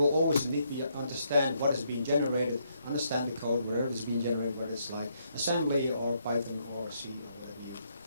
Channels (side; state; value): both; inverted; correlation -0.75